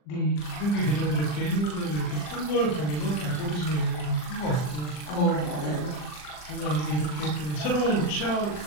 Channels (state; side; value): late; right; 40 ms